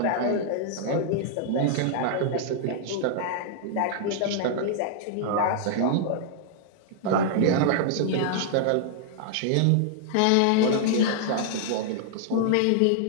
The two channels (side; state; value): both; different; correlation -0.01